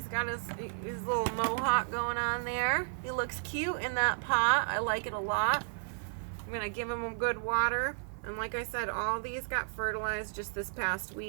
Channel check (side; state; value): left; silent; 56 dB below the other